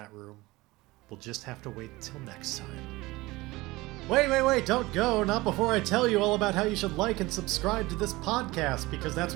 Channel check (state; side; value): quieter; left; 20.6 dB